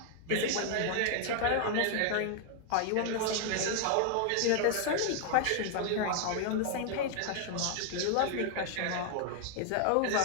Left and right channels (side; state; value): both; different; correlation 0.00